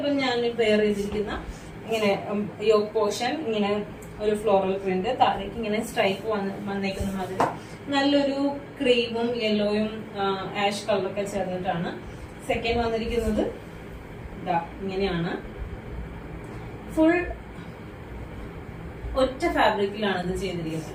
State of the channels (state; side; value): identical; both; correlation 1.00